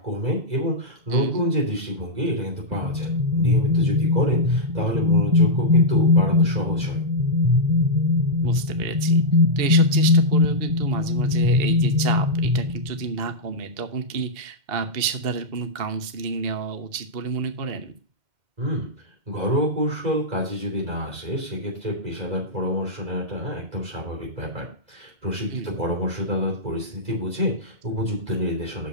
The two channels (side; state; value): left; late; 2.7 ms